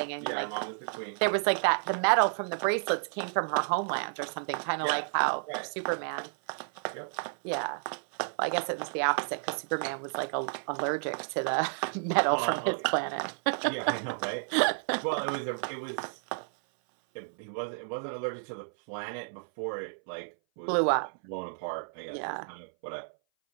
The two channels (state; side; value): silent; left; 57 dB below the other